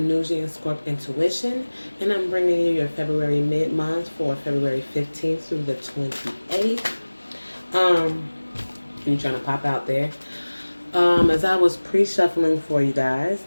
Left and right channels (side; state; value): both; inverted; correlation -1.00